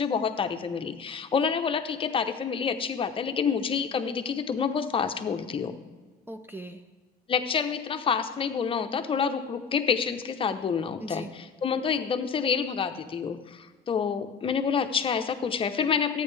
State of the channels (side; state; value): right; quieter; 6.1 dB